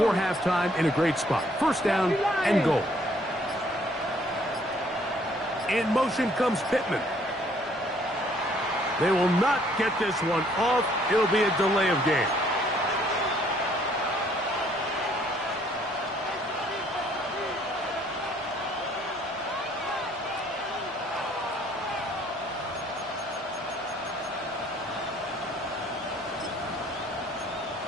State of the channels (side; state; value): both; normal; correlation 0.62